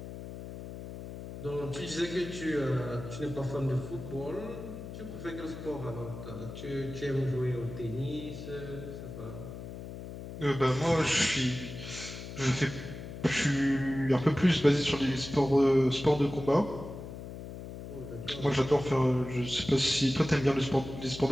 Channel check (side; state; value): left; noise; hum, 10 dB below the sound